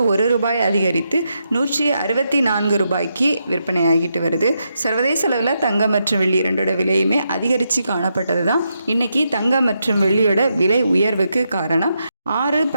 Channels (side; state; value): both; inverted; correlation -0.83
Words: 1 ரூபாய் அதிகரித்து 164 ரூபாய்க்கு விற்பனையாகிட்டு வருது. சர்வதேச அளவில் தங்கம் மற்றும் வெள்ளி இரண்டோட விலையுமே அதிகரித்து காணப்பட்டது தான் இன்றைக்கி தங்கம் மற்றும் வெள்ளியோட விலை உயர்வுக்கு காரணம்.